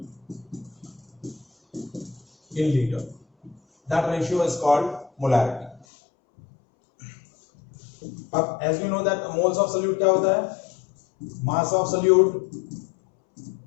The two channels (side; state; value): right; drops out; at 5.9 s